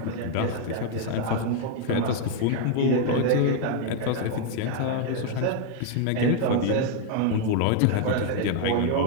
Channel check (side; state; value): both; different; correlation 0.00